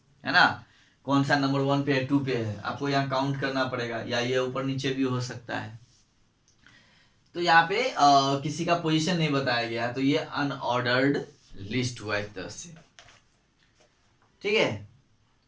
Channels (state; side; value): identical; both; correlation 1.00